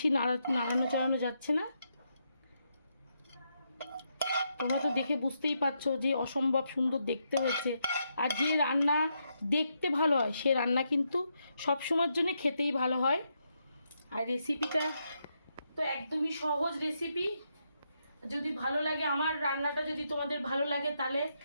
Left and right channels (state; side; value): inverted; both; correlation -0.81